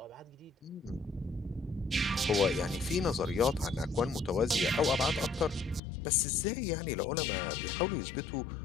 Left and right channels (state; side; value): drops out; right; at 5.8 s